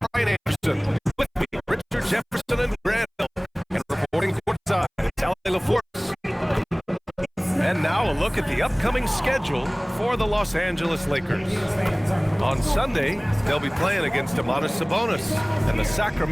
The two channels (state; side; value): identical; both; correlation 1.00